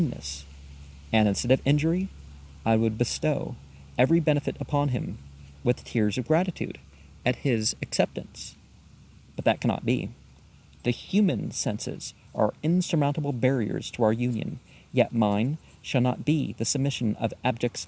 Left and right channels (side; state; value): both; identical; correlation 1.00